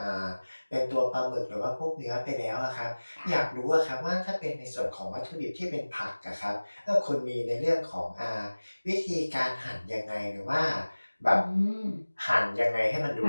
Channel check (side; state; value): both; inverted; correlation -1.00